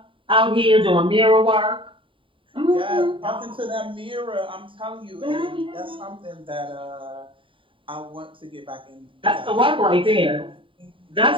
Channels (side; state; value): left; late; 0.25 ms